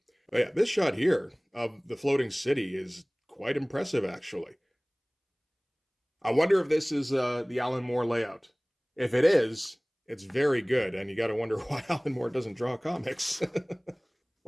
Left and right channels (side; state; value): both; identical; correlation 1.00